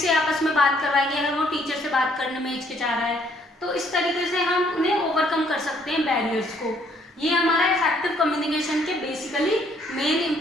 से आपस में बात करवाएंगे अगर वो टीचर से बात करने में हिचकिचा रहा है। तो इस तरीके से हम उन्हें ओवरकम कर सकते हैं बैरियर्स को। ये हमारा इफेक्टिव कम्युनिकेशन के बेसिकली मेन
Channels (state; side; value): normal; both; correlation 0.65